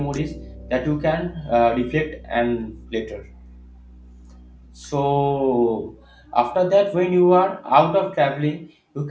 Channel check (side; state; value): both; identical; correlation 1.00